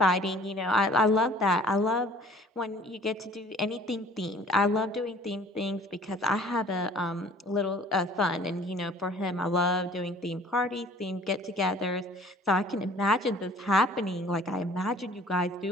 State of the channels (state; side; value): normal; both; correlation 0.51